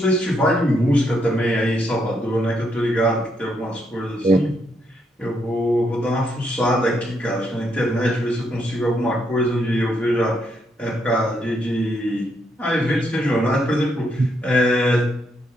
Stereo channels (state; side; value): normal; both; correlation 0.77